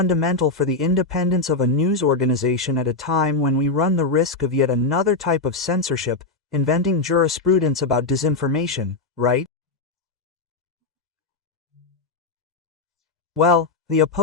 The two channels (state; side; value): quieter; right; 3.6 dB